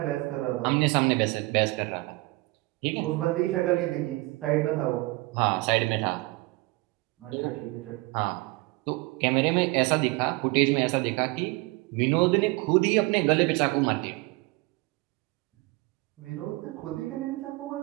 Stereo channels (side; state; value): left; quieter; 22.8 dB